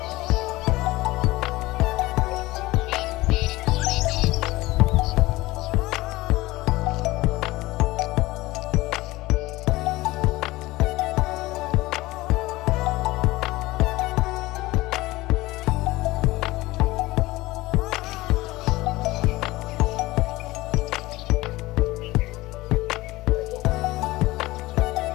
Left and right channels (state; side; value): quieter; right; 19.3 dB